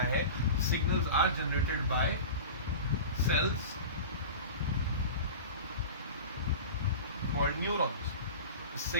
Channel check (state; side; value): inverted; both; correlation -0.32